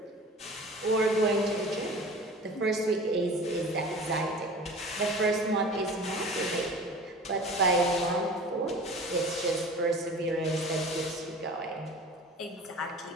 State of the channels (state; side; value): normal; both; correlation 0.40